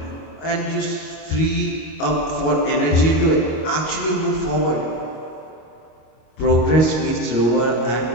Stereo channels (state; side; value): late; right; 25 ms